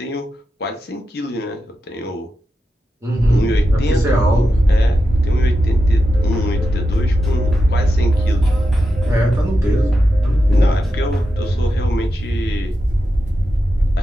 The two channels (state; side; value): normal; both; correlation 0.89